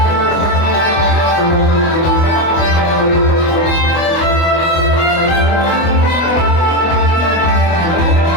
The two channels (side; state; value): right; late; 24 ms